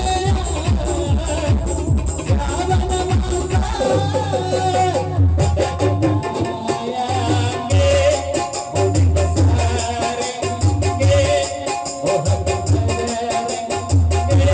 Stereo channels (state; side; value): identical; both; correlation 1.00